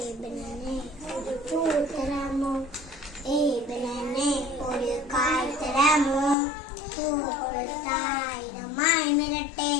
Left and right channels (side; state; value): right; drops out; at 6.4 s